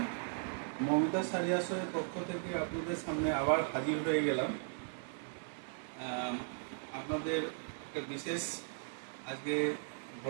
মমিতা শাড়ি আসরের পক্ষ থেকে আপনাদের সামনে আবার হাজির হয়ে গেলাম। আপনাদের একটা বিশেষ আজকে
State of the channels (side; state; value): left; silent; digital silence